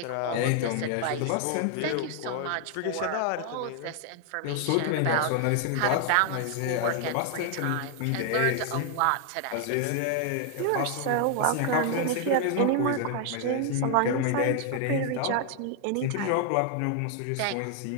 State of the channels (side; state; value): both; different; correlation 0.00